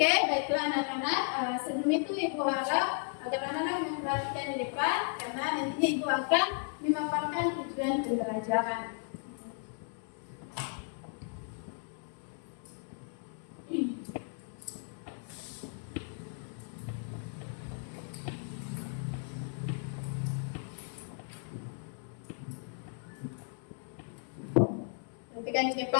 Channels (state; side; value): silent; right; 55 dB below the other